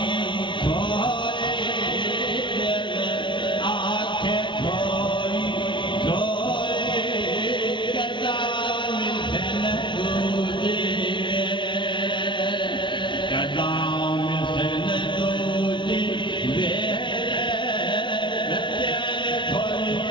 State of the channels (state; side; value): late; right; 0.24 ms